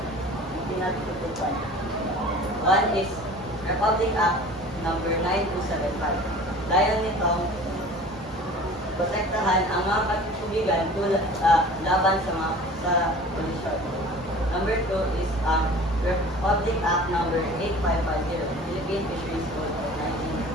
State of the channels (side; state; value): both; normal; correlation 0.43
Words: pinatutupan. One is Republic Act number 9275. Dahil nitong protektahan ang mga katubigan laban sa pollution. Number 2 is Republic Act Number 8550, Philippine Fisheries Code of